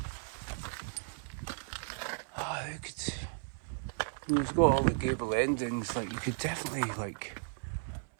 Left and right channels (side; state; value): left; silent; 54 dB below the other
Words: Oh, you could. It's got all the gable endings. Like you could definitely like.